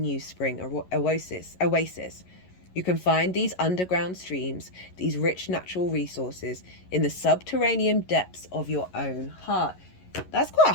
spring oasis. You can find these underground streams, these rich natural resources, in the subterranean depths of your own heart. That's quite a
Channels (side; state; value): right; late; 11 ms